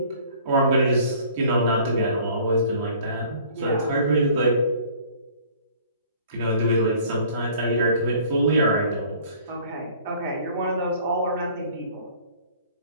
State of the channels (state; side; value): inverted; both; correlation -0.52